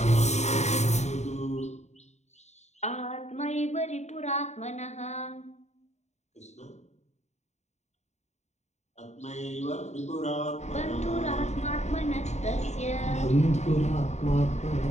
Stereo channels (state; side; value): late; right; 0.33 ms